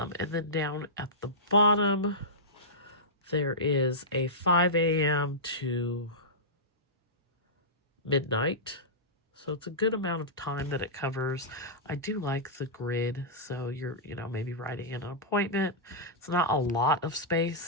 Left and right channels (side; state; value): both; normal; correlation -0.14